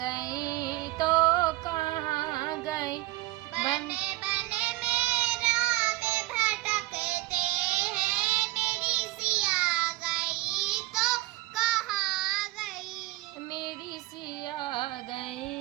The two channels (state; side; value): quieter; left; 18.7 dB